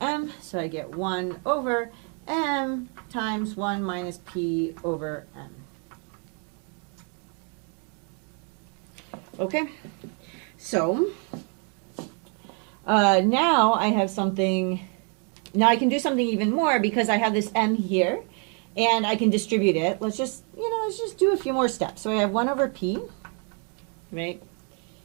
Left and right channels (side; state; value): left; quieter; 39.4 dB